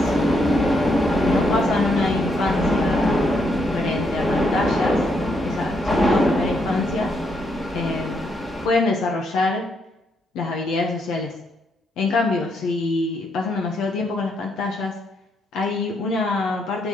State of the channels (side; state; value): both; normal; correlation 0.76